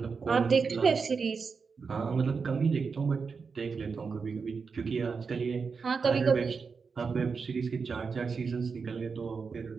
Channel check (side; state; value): left; quieter; 5.2 dB